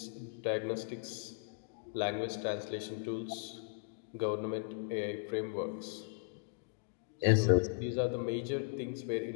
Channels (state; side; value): silent; right; digital silence